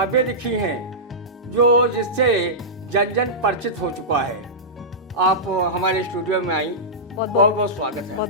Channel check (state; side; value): normal; both; correlation -0.14